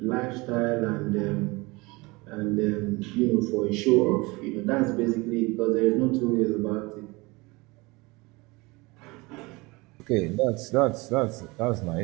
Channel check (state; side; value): quieter; left; 24.2 dB